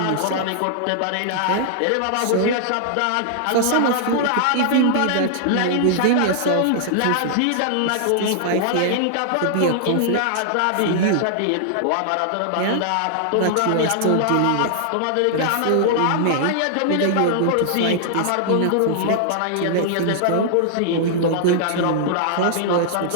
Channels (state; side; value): different; both; correlation -0.01